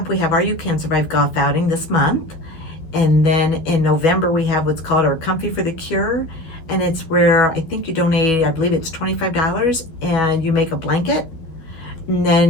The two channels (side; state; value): right; late; 12 ms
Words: we have our You Can Survive golf outing this month. And then in November, we have what's called our Comfy for the Cure. And it's where I think you donate, I believe it's $25, and you make a blanket. And